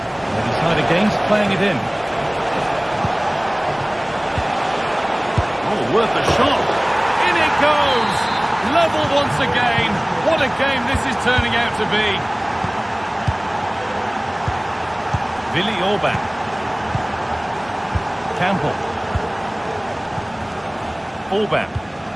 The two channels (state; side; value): noise; left; hum, 28 dB below the sound